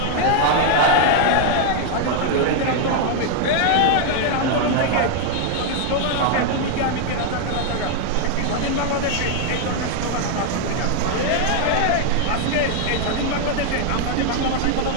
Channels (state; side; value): different; both; correlation 0.00